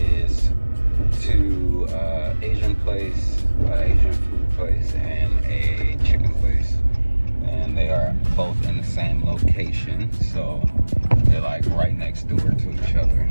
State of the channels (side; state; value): both; inverted; correlation -1.00